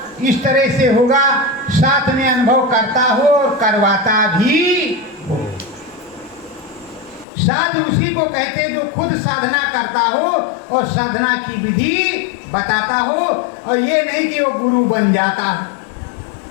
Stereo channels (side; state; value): right; drops out; at 7.2 s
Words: इस तरह से होगा, साथ में अनुभव करता हो और करवाता भी हो। साधु उसी को कहते जो खुद साधना करता हो और साधना की विधि बताता हो, और ये नहीं कि वो गुरु बन जाता हो